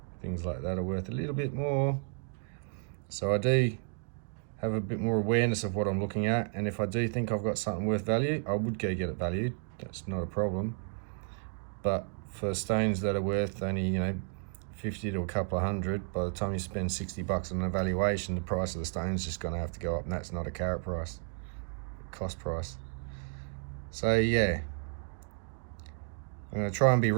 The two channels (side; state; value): left; silent; 56 dB below the other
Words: things like that are worth a little bit more. So I do have a bit more awareness of what I'm looking at, and if I do think I've got something worth value, I would go get it valued. That's not a problem. But for stones that are worth only, you know, 50 to a couple of hundred, by the time you spend $60 on an evaluation, the price of the stone's just going to have to go up, and that's not a carat price, cost price. So yeah, I'm going to try and be